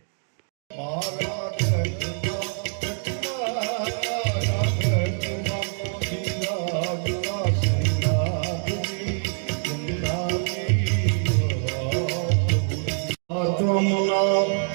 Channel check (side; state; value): left; silent; 62 dB below the other